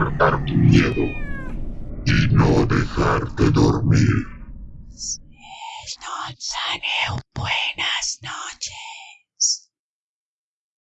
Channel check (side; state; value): both; identical; correlation 1.00